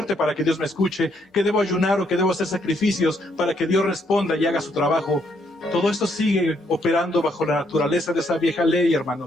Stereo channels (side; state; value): both; normal; correlation 0.73